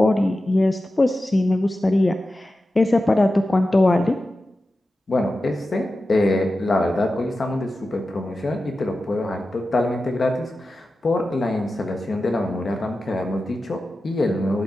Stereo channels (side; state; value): both; normal; correlation 0.93